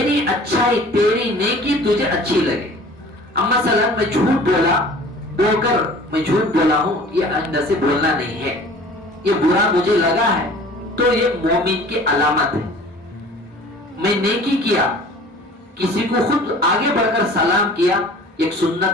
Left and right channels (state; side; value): normal; both; correlation 0.46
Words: اچھائی, تیری نیکی تجھے اچھی لگے. اب مثلا میں جھوٹ بول کر میں جھوٹ بولا ہوں, یہ آئندہ سے بولنا نہیں ہے, یہ برا مجھے لگا ہے, تو یہ مومن کی علامت ہے. میں نیکی کیا, کسی کو خود آگے بڑھ کر سلام کیا, ایک